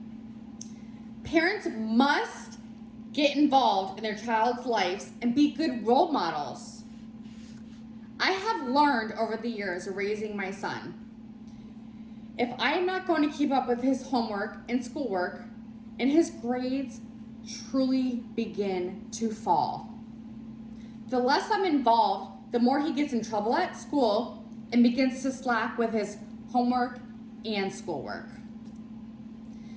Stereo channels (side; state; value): both; identical; correlation 1.00